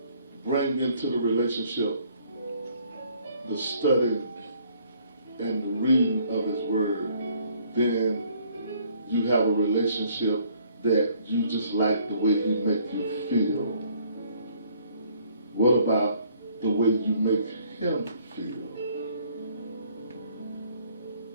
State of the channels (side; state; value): both; inverted; correlation -0.62